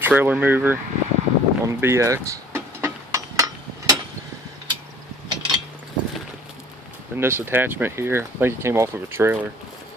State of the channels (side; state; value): both; normal; correlation 0.52